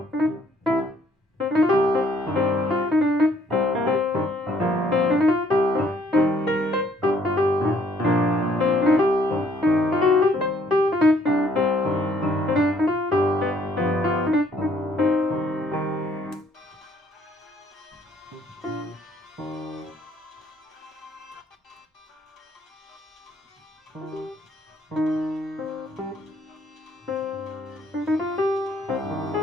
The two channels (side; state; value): both; normal; correlation 0.64